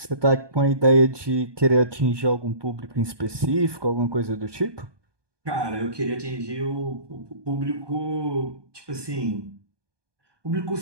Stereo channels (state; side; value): late; left; 1.2 ms